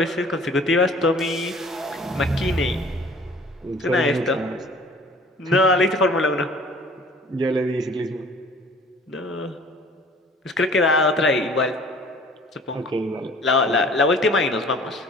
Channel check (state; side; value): normal; both; correlation 0.50